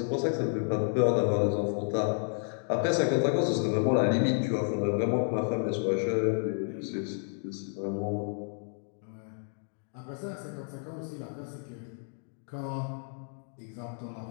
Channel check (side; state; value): right; silent; 57 dB below the other